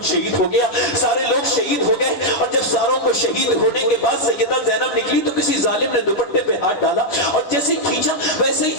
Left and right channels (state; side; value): late; right; 9.8 ms